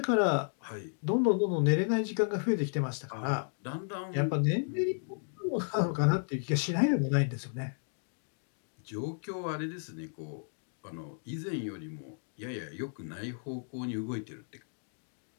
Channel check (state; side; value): silent; right; digital silence